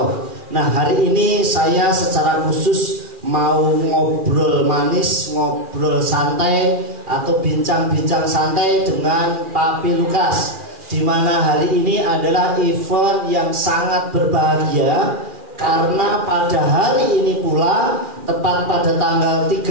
Nah, hari ini saya secara khusus mau ngobrol manis, ngobrol santai atau bincang-bincang santai dengan Papi Lukas, di mana hari ini adalah event yang sangat berbahagia karena pada hari ini pula, tepat pada tanggal 30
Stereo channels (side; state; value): left; late; 2.4 ms